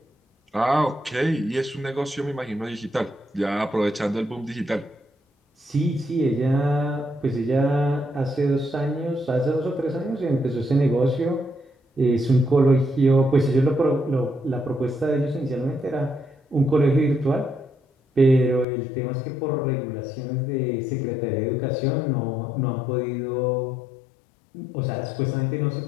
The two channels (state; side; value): drops out; right; at 18.7 s